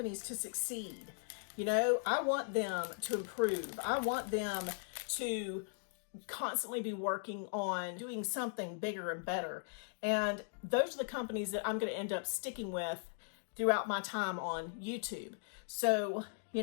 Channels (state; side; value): silent; right; digital silence